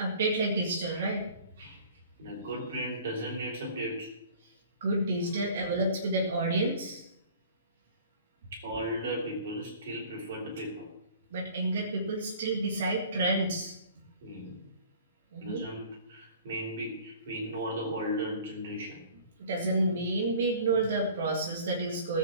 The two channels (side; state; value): both; inverted; correlation -0.48